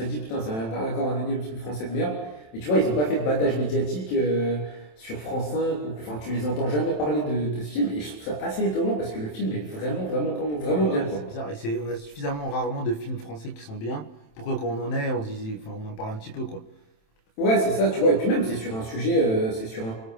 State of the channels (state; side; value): late; right; 27 ms